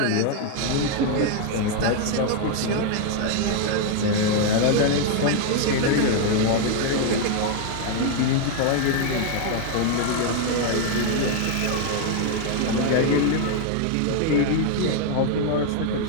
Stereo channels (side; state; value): both; different; correlation 0.00